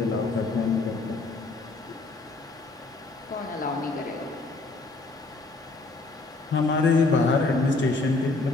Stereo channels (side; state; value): right; quieter; 3.4 dB